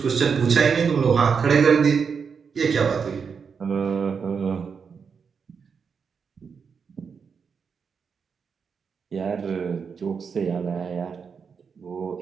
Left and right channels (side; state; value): left; quieter; 6.0 dB